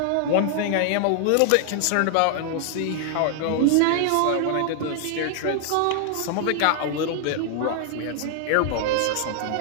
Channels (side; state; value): both; different; correlation 0.00